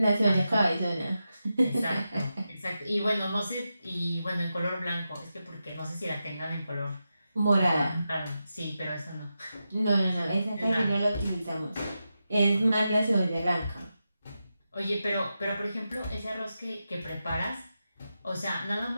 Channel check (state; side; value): inverted; both; correlation -0.89